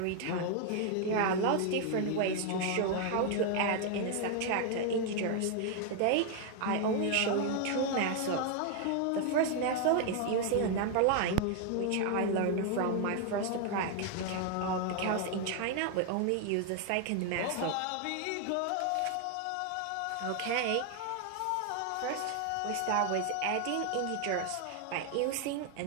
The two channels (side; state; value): both; different; correlation 0.01